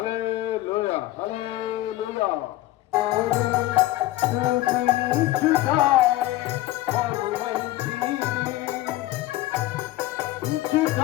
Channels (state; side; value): quieter; right; 16.6 dB